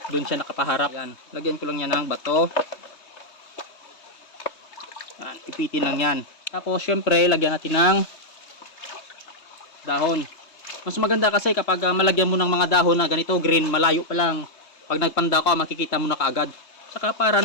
doon siya nakapaharap. Yan, lagyan ko lang yan ng bato. Yan, ipitin lang yan. Tapos syempre, lagyan natin ng dahon. Mas maganda kasi kapag malagyan mo ng mga dahon na ganito, green, malayo pa lang. Pag nagpanda ka, makikita mo na kaagad. Saka para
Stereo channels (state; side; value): late; right; 3.2 ms